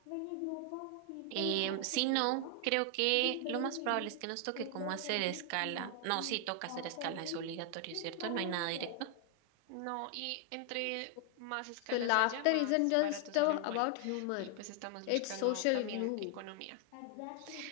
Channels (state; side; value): different; both; correlation 0.00